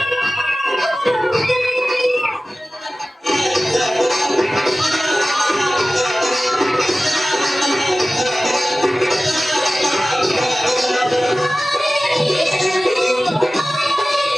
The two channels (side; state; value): both; normal; correlation 0.96